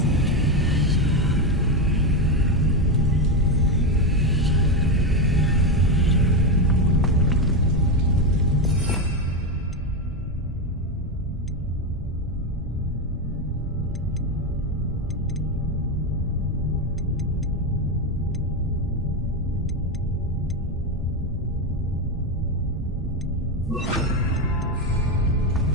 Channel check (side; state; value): both; normal; correlation 0.11